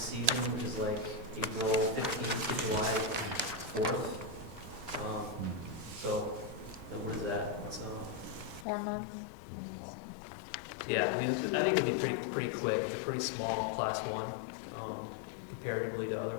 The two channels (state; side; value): drops out; right; at 8.7 s